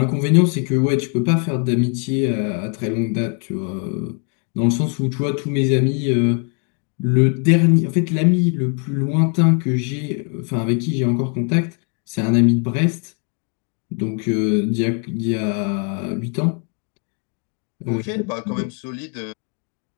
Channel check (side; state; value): right; quieter; 39.1 dB